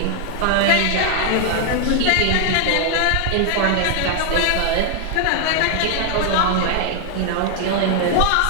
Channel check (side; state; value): both; different; correlation 0.00